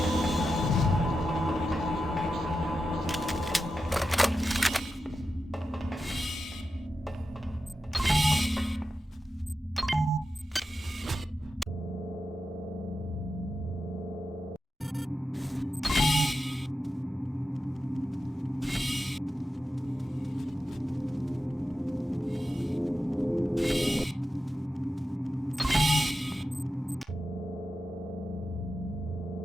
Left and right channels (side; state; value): both; normal; correlation 0.90